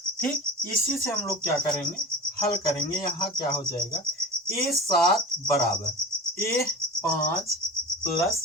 ठीक, इसी से हम लोग क्या करेंगे, हल करेंगे। यहाँ क्या हो जाएगा, A7 बराबर A5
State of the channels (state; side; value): normal; both; correlation 0.32